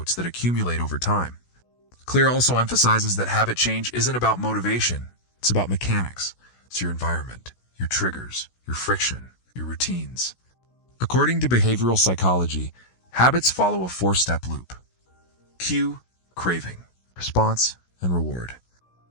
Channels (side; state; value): right; late; 16 ms